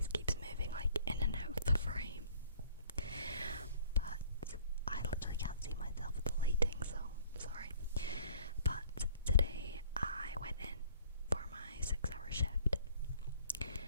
keeps moving like in and out of the frame, but I literally can't see myself with the lighting, so sorry. But today I went in for my 6-hour shift,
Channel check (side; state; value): both; inverted; correlation -0.55